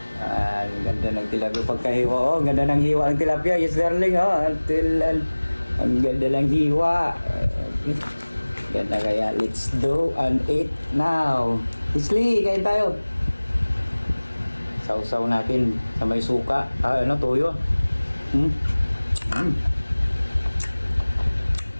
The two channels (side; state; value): both; inverted; correlation -1.00